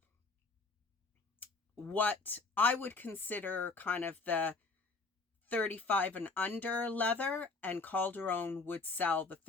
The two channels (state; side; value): quieter; right; 3.8 dB